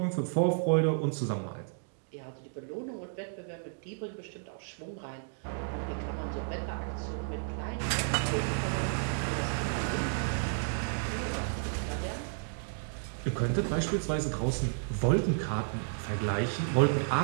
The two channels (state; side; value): silent; left; digital silence